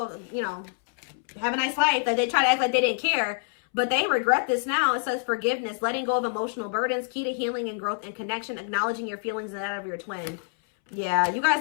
have a nice life. Like they try to act like they didn't care. But they regret this now. It says forgiveness, letting go of emotional burdens, key to healing and growth and connection, acknowledging your feelings and that of your twin. Yeah, you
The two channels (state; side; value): silent; right; 61 dB below the other